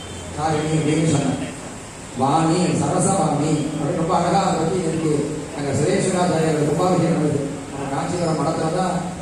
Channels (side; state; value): both; identical; correlation 1.00